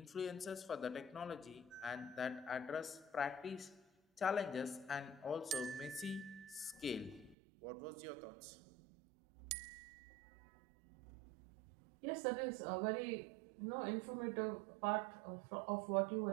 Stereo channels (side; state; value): left; drops out; at 7.4 s